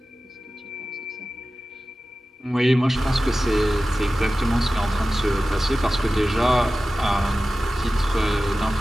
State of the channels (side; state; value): both; normal; correlation 0.95